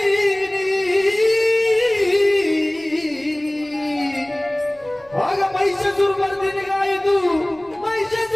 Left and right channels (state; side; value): noise; right; rumble, 27 dB below the sound